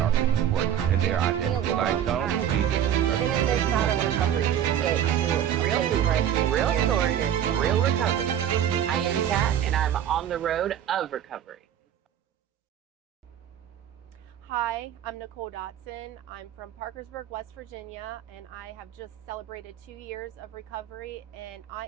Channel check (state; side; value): quieter; left; 10.1 dB